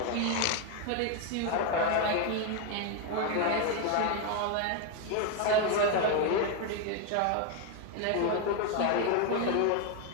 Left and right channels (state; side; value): different; both; correlation 0.01